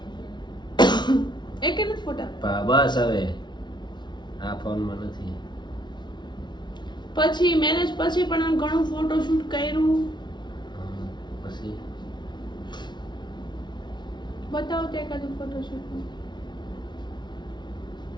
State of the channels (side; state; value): right; late; 0.21 ms